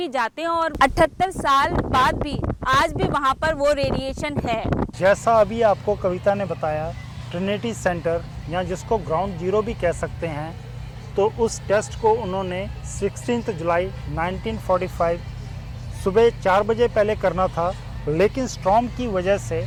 जाते हैं, और 78 साल बाद भी आज भी वहाँ पर वो रेडिएशन है। जैसा अभी आपको कविता ने बताया, ट्रिनिटी सेंटर या जिसको ग्राउंड जीरो भी कह सकते हैं, तो उस टेस्ट को उन्होंने 16 जुलाई 1945 सुबह 4 बजे पहले करना था, लेकिन स्टॉर्म की वजह से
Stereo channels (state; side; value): identical; both; correlation 1.00